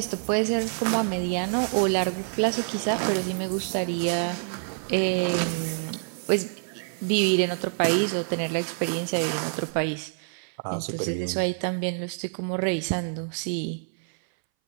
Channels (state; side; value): silent; left; 60 dB below the other